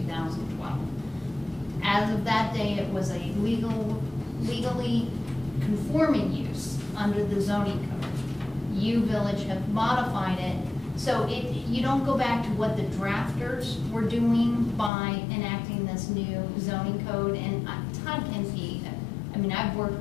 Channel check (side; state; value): right; drops out; at 14.9 s